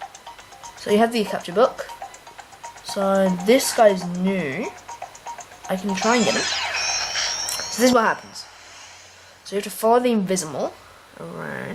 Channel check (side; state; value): both; identical; correlation 1.00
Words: So you have the capture book. So this guy's new. I can try and get him. So this is what happens. So you have to follow the Invisimal